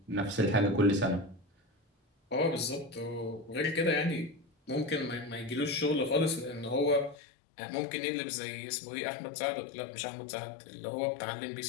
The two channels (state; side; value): drops out; right; at 7.2 s